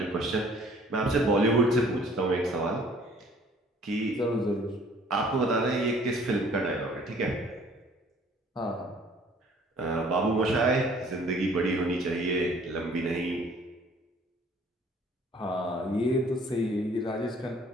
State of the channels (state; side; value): normal; both; correlation 0.56